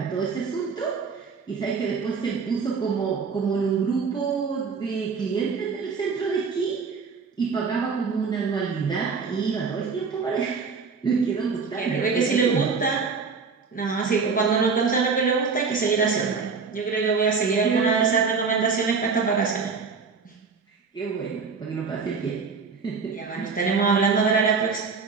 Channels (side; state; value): left; quieter; 5.2 dB